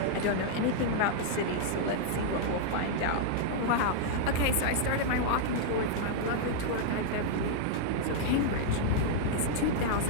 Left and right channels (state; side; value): different; both; correlation -0.01